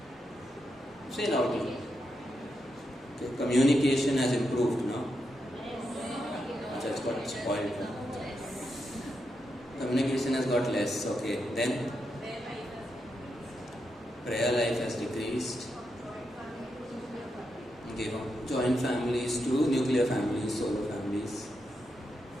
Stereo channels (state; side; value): normal; both; correlation 0.84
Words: Say loudly. Okay. Communication has improved now. It's got spoiled. Communication has got less. Okay. Then prayer life has decreased. Okay. Joint families to nuclear families, solo families.